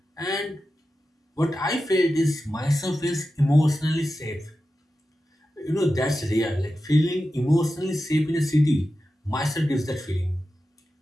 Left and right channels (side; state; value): both; normal; correlation 0.92